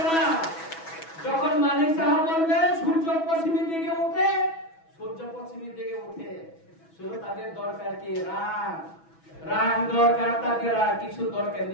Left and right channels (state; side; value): late; right; 6.1 ms